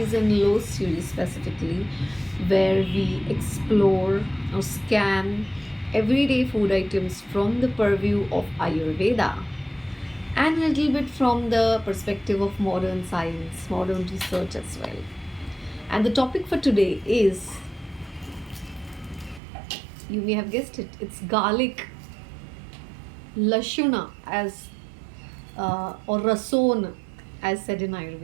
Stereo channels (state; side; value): drops out; left; at 19.4 s